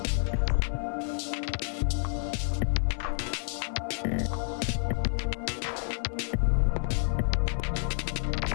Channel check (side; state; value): right; silent; 58 dB below the other